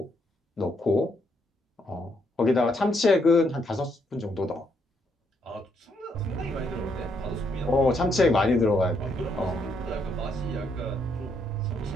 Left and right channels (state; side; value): normal; both; correlation 0.74